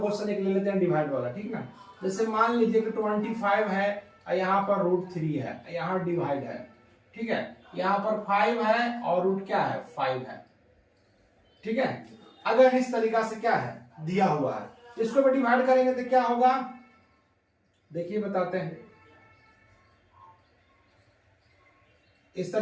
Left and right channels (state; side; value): identical; both; correlation 1.00